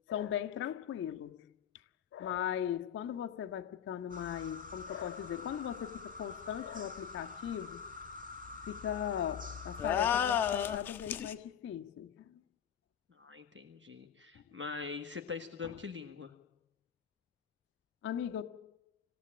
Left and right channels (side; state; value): right; quieter; 8.6 dB